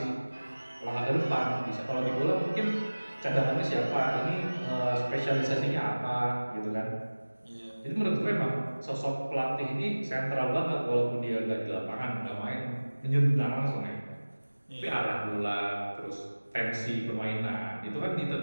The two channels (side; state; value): both; inverted; correlation -1.00